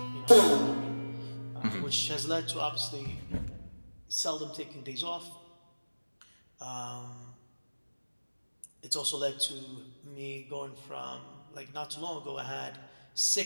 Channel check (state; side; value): inverted; both; correlation -1.00